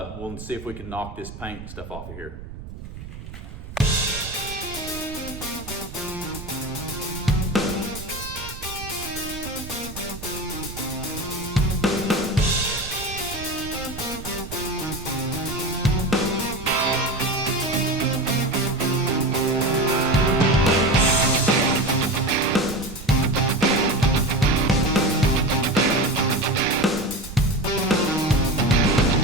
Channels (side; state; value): right; noise; rumble, 13 dB below the sound